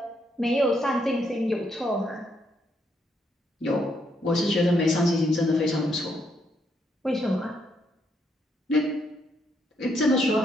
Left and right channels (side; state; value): both; normal; correlation 0.75